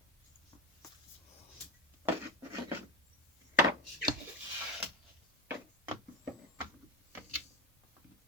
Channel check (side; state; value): both; normal; correlation 0.18